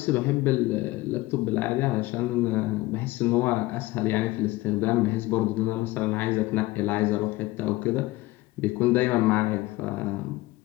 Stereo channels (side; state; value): right; quieter; 19.2 dB